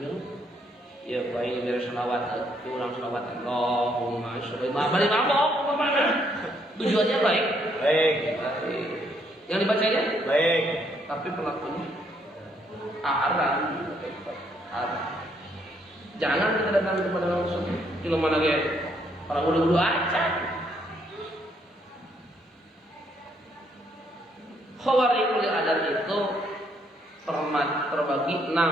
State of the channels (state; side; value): normal; both; correlation 0.71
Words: Ya baik dari sholawat, itu orang sholawat Allahumma sholli balik mabok. Tujuannya baik. Yang dibacanya baik, tapi pelakunya haram. Jangan kita datang kepada langsung. Kalau mana kayak para ulu-ulu aja. Khawarijul adat itu terbagi